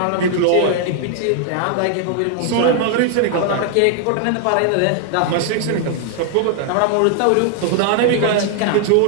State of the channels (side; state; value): both; different; correlation 0.00